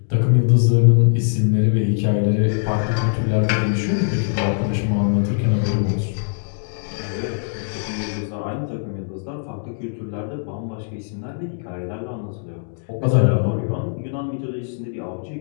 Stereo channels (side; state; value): right; silent; digital silence